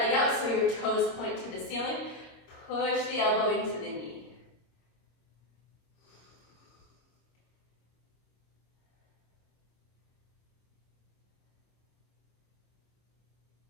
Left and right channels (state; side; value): late; right; 26 ms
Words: out so your toes point to the ceiling. Push the elbow into the knee.